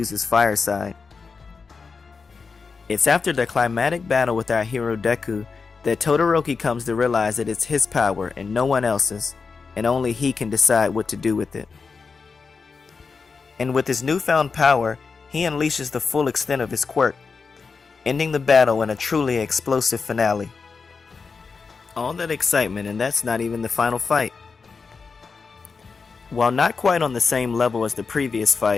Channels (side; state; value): right; quieter; 4.9 dB